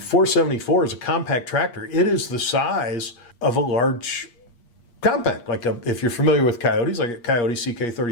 is a compact tractor. It is the size of a large compact, if you're familiar with Coyotes, like a Coyote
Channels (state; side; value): late; right; 8.5 ms